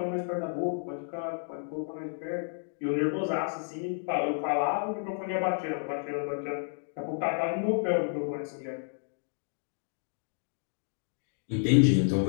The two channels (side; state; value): right; silent; digital silence